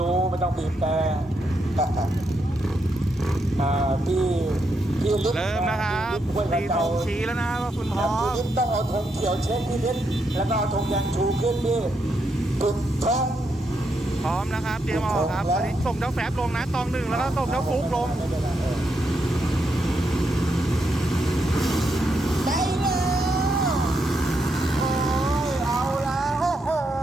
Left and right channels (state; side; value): normal; both; correlation 0.80